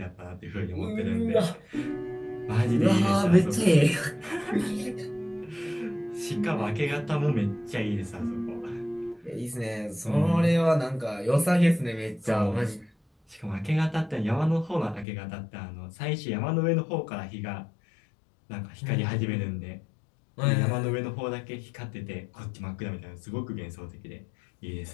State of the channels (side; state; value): right; drops out; at 15.1 s